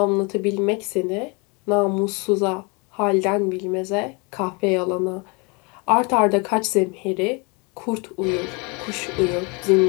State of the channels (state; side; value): quieter; right; 30.8 dB